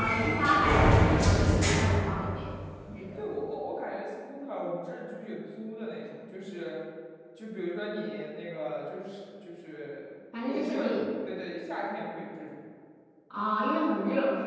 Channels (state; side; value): identical; both; correlation 1.00